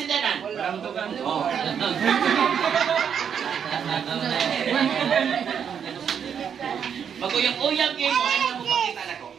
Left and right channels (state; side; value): quieter; left; 7.8 dB